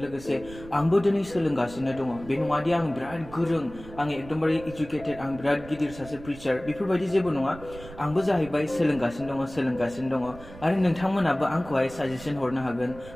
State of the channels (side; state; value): right; noise; rumble, 17 dB below the sound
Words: लोगोसे आंबो दिनै सोलोंगासिनो दङ। बे नङादि आं बिराद गोरों, आं एकदमबारे इडुकेटेड, आं बिराद गिदिर सासे प्रिचार, बेफोरबायदि जेबो नङा। आंबो जाहैबाय सोलोंगासिनो दङ आरो नोंथांमोनाबो आंखौहाय साजेसन हरनो हागोन,